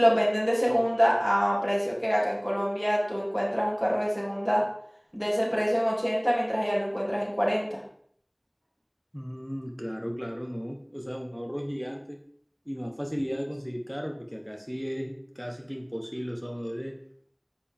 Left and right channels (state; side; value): identical; both; correlation 1.00